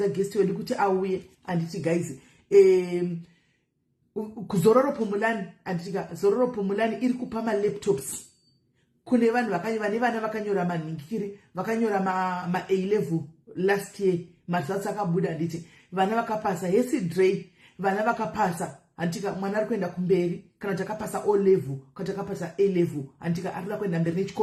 guest wedu kuti auye anditi guys kuzororo pomulani anditika zororo pomulani iri kupa laptops kune vanhu vane vana vakanyora manhingiri vakanyora ma A-level last year results akabuda nditi vana vakapasa Hesi Dre vana vakapasa antika mwana ari kuenda kumberi kana takapasa O level kana takapasa A level antika ari kuenda mberi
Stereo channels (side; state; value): both; identical; correlation 1.00